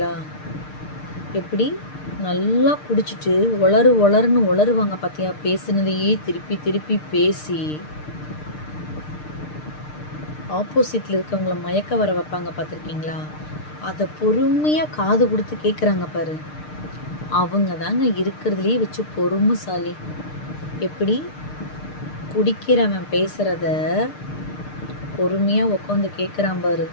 எப்படி நல்லா குடிச்சிட்டு ஒளருன்னு ஒளருவாங்க பார்த்தியா? பேசுனதையே திருப்பி திருப்பி பேசி ஆப்போசிட்டில் இருக்கவங்கள மயக்க வர வைப்பாங்க பார்த்துருக்கீங்களா? அதை பொறுமையாக காது கொடுத்து கேட்குறாங்க பாரு, அவங்க தாங்க இருக்கிறதுலேயே வச்சு பொறுமைசாலி. எப்படி குடிக்கிறவன் பேசுகிறத பொறுமையாக உட்காந்து கேட்குறான் பாரு,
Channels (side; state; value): right; late; 6.6 ms